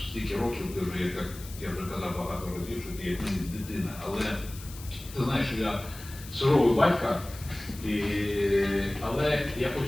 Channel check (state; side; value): noise; left; hiss, 16 dB below the sound